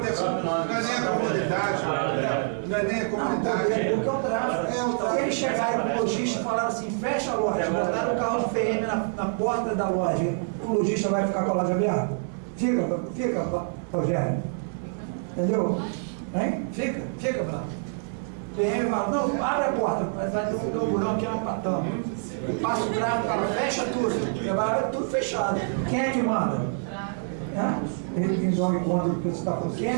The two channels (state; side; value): silent; left; digital silence